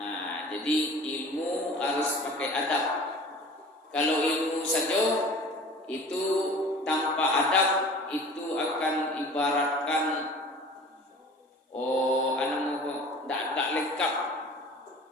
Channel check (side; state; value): both; normal; correlation 0.43